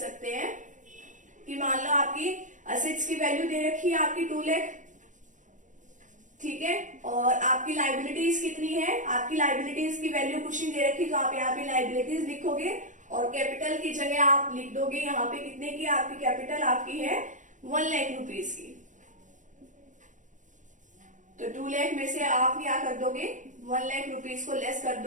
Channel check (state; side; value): late; left; 0.36 ms